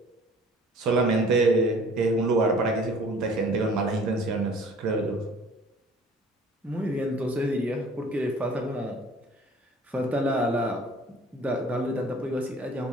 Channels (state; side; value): normal; both; correlation 0.50